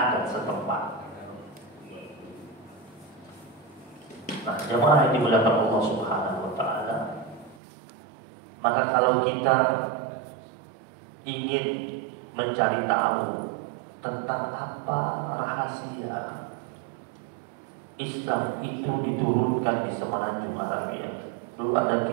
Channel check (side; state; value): left; drops out; at 7.6 s